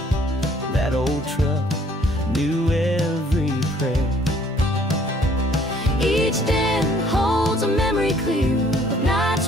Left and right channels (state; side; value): normal; both; correlation 0.60